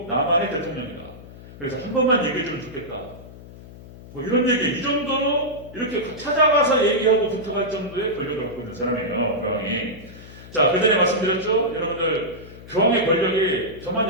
남한의 대통령이다. 그래서 한 번만 얘기해주면 좋겠다. 뭐 이런 얘기 이 정도로 이렇게 찾아가서 얘기하고 부탁할 정도의 권력을 갖고 있는 사람이에요. 교황이. 자, 그 전에 말씀드렸죠? 여러분들 교황의 권력이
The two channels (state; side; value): noise; left; hum, 17 dB below the sound